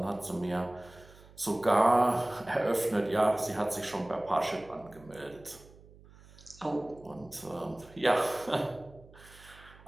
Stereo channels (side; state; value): right; noise; hum, 23 dB below the sound